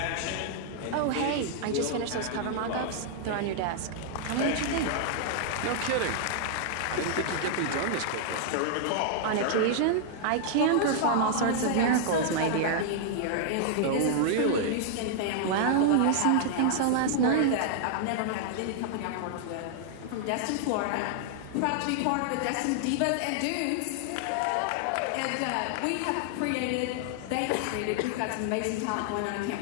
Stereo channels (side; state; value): both; different; correlation -0.01